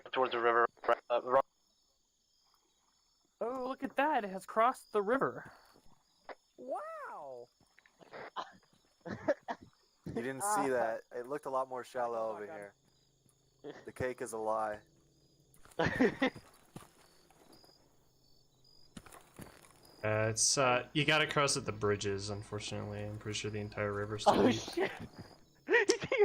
towards the river. Oh, look at that! It has crossed the river. Wow! You didn't see that. It looked a lot more shallow over here. The cake is a lie. It's you gotta cross at the bridges. Unfortunately, I'm pretty sure the entire river's still Oh deep. shit! He's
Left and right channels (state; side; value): identical; both; correlation 1.00